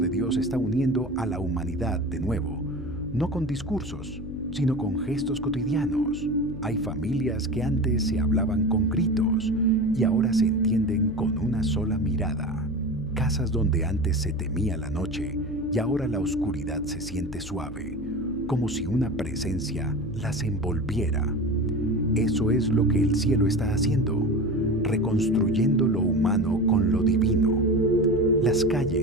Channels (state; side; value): noise; left; hum, 13 dB below the sound